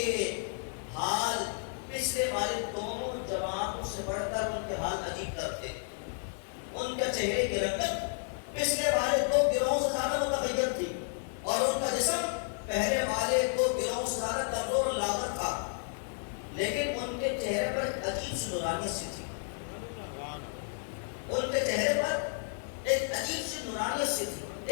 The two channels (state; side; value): silent; right; 56 dB below the other